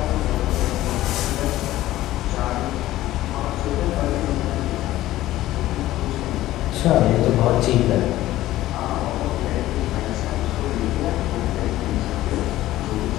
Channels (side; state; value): right; quieter; 15.3 dB